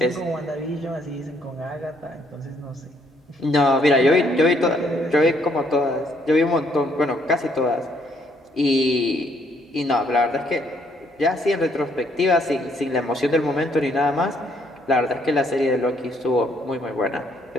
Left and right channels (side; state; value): both; normal; correlation 0.69